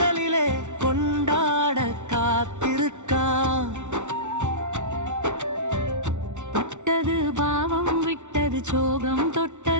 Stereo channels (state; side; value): late; left; 0.84 ms